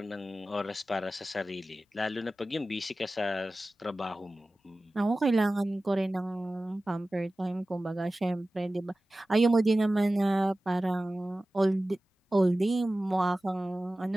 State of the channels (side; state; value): both; normal; correlation 0.96